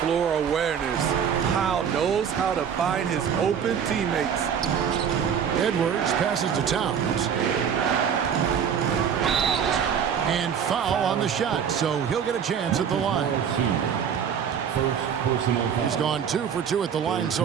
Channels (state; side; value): quieter; left; 7.8 dB